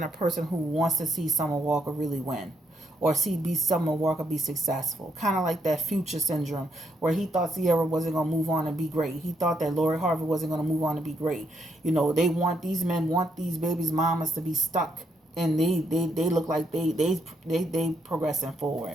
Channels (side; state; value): both; normal; correlation 0.77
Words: a person who wants to see Summer Walker really win, or see Summer Walker be successful. Kind of like that Future syndrome, where he thought Sierra wasn't going to move on and be great. He thought that Lori Harvey wasn't going to move on to be great. These men want these babies' mamas to be stuck, and they look like they progressing